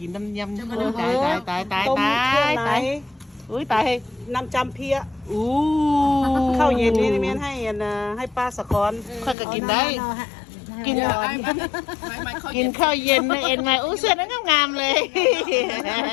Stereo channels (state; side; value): drops out; right; at 9.3 s